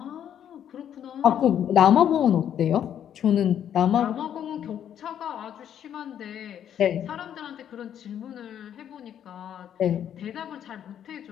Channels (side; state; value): right; quieter; 9.7 dB